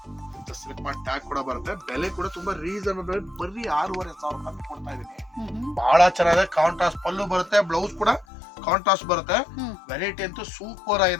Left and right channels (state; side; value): drops out; right; at 8.2 s